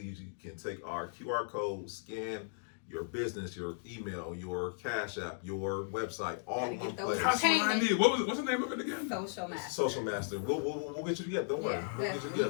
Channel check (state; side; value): silent; right; digital silence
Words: can take our QR code, scan your business, your email, your Cash App, your website, all in Gotta one get those place. That's what I need. What's the name of it again? Social Master. Social Master. We'll get you together. Don't worry. Yeah, We'll get you we